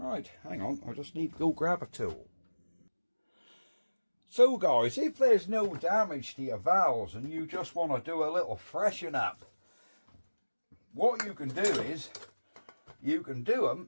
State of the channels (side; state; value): both; inverted; correlation -1.00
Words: hang on, I just need to go grab a tool. So guys, if there's no damage to your valves and you just want to do a little freshen up, what you can do is, you can do